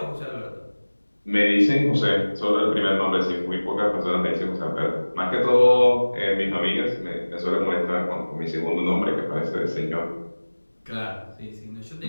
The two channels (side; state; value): both; inverted; correlation -1.00